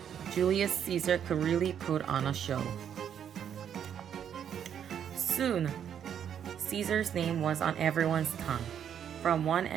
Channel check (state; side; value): quieter; left; 8.9 dB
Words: Julius Caesar could really put on a show. Soon, Caesar's name was on everyone's tongue. From one